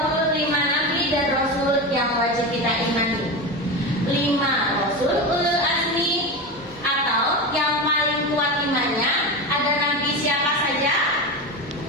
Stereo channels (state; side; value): normal; both; correlation 0.21